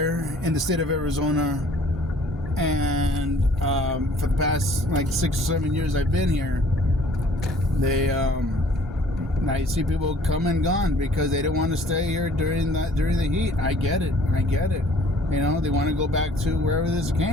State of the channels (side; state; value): both; normal; correlation 0.55